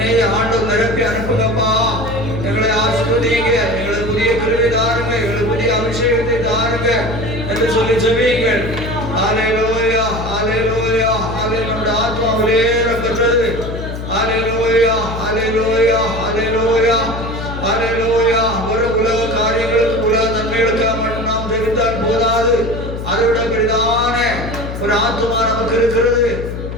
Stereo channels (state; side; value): noise; left; hum, 7 dB below the sound